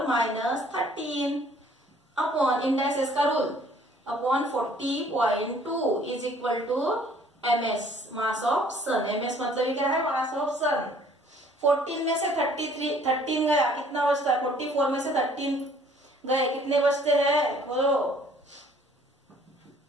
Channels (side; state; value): both; normal; correlation 0.57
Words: minus 13 upon indices का रूल, upon 40.2 is equal to ms mass of sun. ms मतलब ये क्या है, मास ऑफ सन। 14 में से 13 गया, कितना बचता है, 44 में से 13 गए, कितने बचते हैं बोलो,